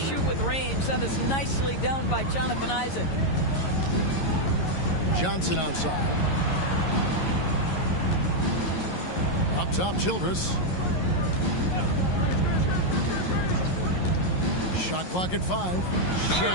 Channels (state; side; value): late; right; 11 ms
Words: with range. That is nicely done by Jonathan Isaac. Johnson outside. Up top, Childress. Shot clock at 5.